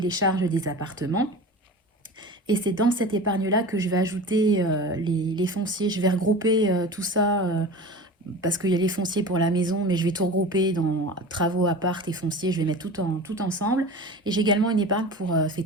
charges des appartements. Et c'est dans cette épargne-là que je vais ajouter les fonciers. Je vais regrouper tout ça parce qu'il y a les fonciers pour la maison, mais je vais tout regrouper dans travaux, appart et fonciers. Je vais mettre tout ensemble. Et j'ai également une épargne pour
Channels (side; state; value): both; normal; correlation 0.34